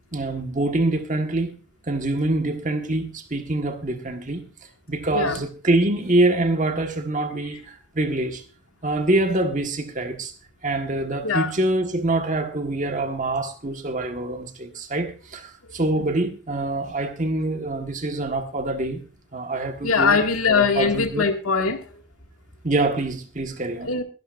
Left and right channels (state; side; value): normal; both; correlation 0.34